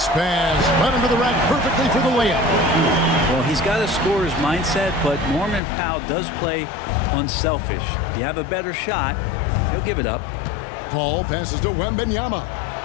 pass. Right under the rack perfectly for the layup. Well, he's got a scorer's mindset, but Norman Powell does play unselfish. If you have a better shot, he'll give it up. Paul passes to Wembanyama.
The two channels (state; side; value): drops out; right; at 5.6 s